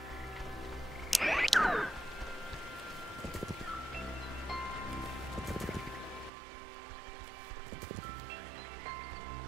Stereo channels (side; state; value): left; drops out; at 6.3 s